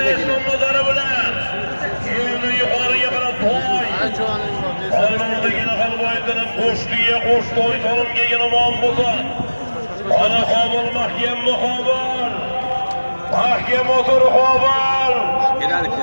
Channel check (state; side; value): inverted; both; correlation -1.00